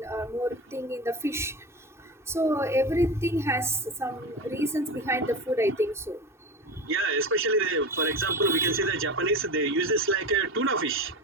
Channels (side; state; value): both; normal; correlation 0.26